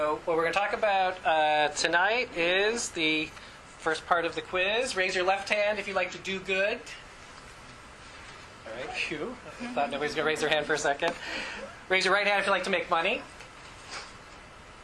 what we're going to talk about tonight is the first part of the quiz. Raise your left hand if you like to do good. All right, phew. I thought nobody's going to raise their hand for a second. Raise your right hand if you like to make money.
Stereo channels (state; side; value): identical; both; correlation 1.00